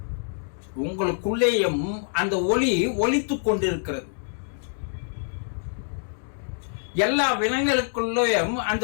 உங்களுக்குள்ளேயும் அந்த ஒளி ஒலித்துக் கொண்டிருக்கிறது. எல்லா விலங்குகளுக்குள்ளேயும்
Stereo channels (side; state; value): right; silent; digital silence